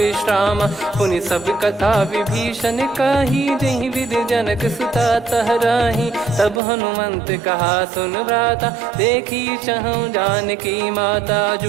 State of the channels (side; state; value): left; drops out; at 6.6 s